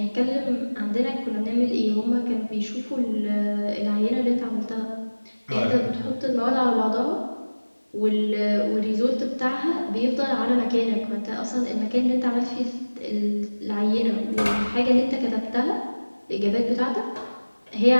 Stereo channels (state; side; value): inverted; both; correlation -1.00